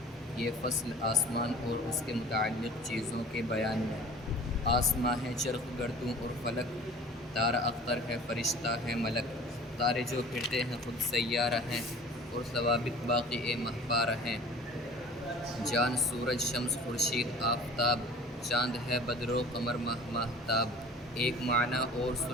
یہ فصل آسمان اور اس کے متعلق چیزوں کے بیان میں۔ آسماں ہے چرخ گردوں اور فلک، تارا اختر ہے فرشتہ ہے ملک، تارے جو پھرتے ہیں خود سیارہ ہیں، اور ثوابت باقی مہپارہ ہیں۔ جان سورج شمس خورشید آفتاب، چاند ہے بدر و قمر ماہتاب، ایک معنی اور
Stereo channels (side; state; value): both; normal; correlation 0.44